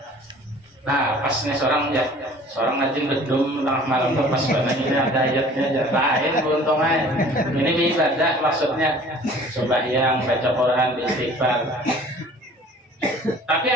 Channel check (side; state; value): both; normal; correlation 0.49